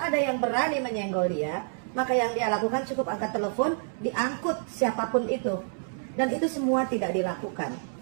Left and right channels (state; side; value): silent; left; 59 dB below the other